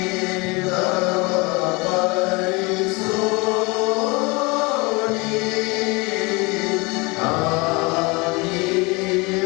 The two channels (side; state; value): right; quieter; 26.4 dB